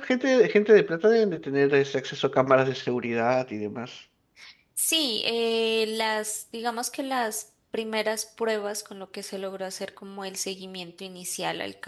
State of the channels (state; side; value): identical; both; correlation 1.00